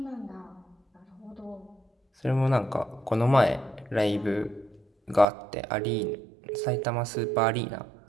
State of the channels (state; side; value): drops out; left; at 5.2 s